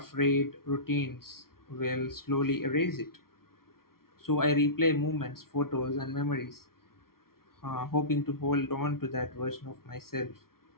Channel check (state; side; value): late; right; 0.93 ms